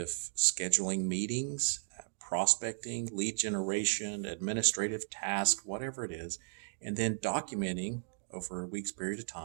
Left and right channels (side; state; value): left; silent; digital silence